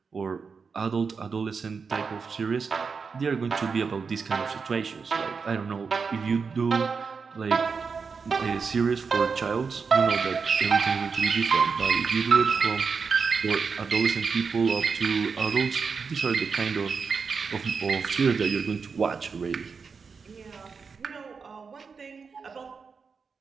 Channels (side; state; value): left; quieter; 5.3 dB